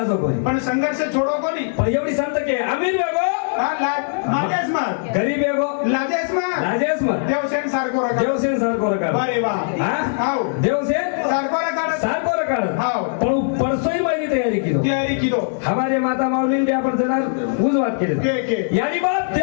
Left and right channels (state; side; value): silent; right; 65 dB below the other